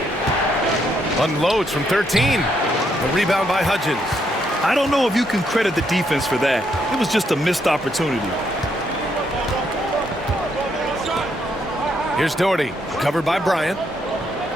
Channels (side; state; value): both; normal; correlation 0.75